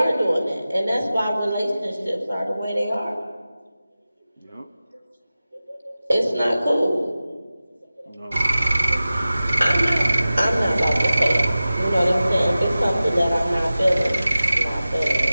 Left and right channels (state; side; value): inverted; both; correlation -0.95